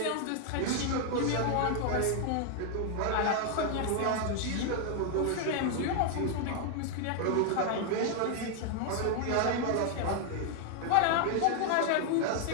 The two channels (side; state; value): both; different; correlation 0.00